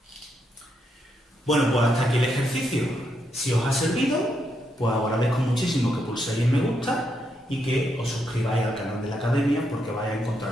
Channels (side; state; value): both; normal; correlation 0.79